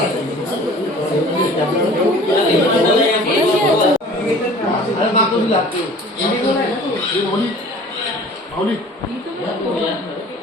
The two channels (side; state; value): both; normal; correlation 0.46